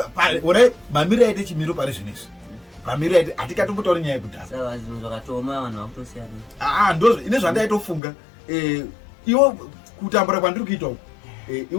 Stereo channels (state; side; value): drops out; right; at 8.0 s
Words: ora mamiro aite chimiro pari zvinezvi mamiro aite hatikatombutauri nyaya yekudhaka. Saka zvinhu zvakatoma vanhu vakutosiyana. Ndo ine zvandaitofunga iwo kutambura kwandiri kuita uku